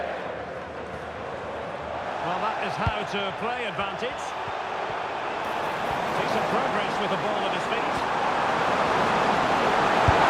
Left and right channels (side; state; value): both; identical; correlation 1.00